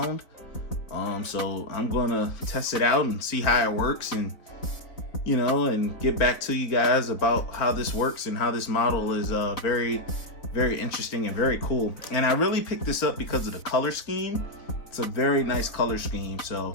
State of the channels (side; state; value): right; late; 4.0 ms